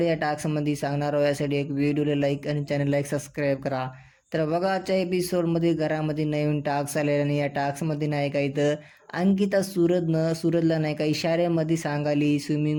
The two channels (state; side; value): identical; both; correlation 1.00